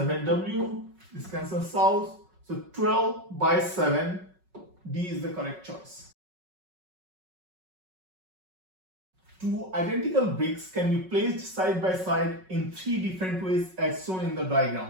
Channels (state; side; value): late; left; 5.4 ms